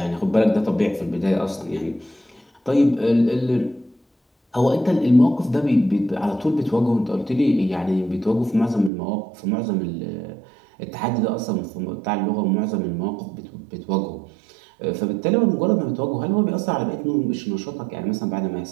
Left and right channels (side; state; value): left; drops out; at 8.9 s